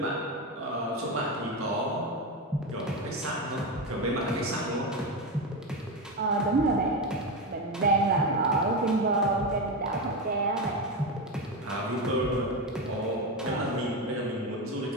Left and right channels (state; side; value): normal; both; correlation 0.15